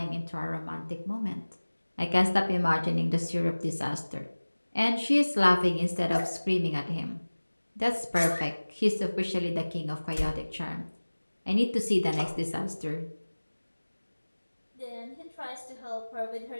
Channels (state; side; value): inverted; both; correlation -1.00